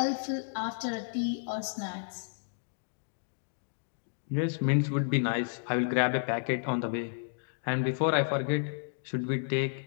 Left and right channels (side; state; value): right; silent; digital silence